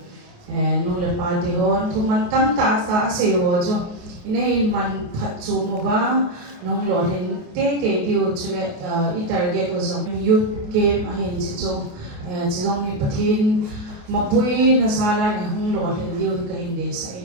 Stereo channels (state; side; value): late; left; 28 ms